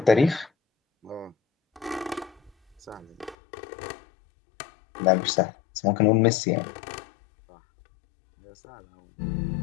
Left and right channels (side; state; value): right; drops out; at 3.4 s